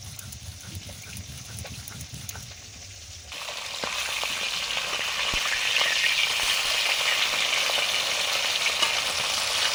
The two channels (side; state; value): both; identical; correlation 1.00